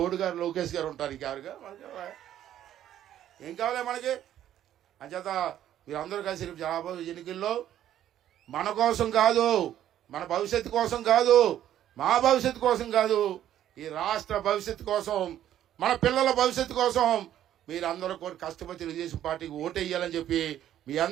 లోకేష్ గారు ఉంటారు. ఇంకెవరుగా మనకి ఏం కావాలి మనకి? అంచేత మీరందరూ కలిసి రాబోయే ఎన్నికల్లో మన కోసం కాదు, మన భవిష్యత్తు కోసం కాదు, మా భవిష్యత్తు కోసం కాదు, ఈ రాష్ట్ర భవిష్యత్తు కోసం, మన పిల్లల భవిష్యత్తు కోసం మీరందరూ కూడా కష్టపడి తెలుగుదేశం పార్టీకి ఓటు వేయాలని చెప్పి మీ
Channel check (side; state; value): left; quieter; 11.6 dB